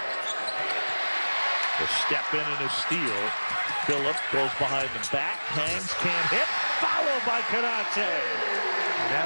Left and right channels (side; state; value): both; inverted; correlation -1.00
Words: A step in and a steal. Phillip goes behind the back, hangs, can't hit, followed by Canate. And